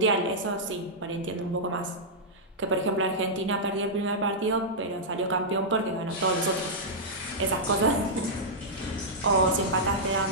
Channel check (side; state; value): both; normal; correlation -0.10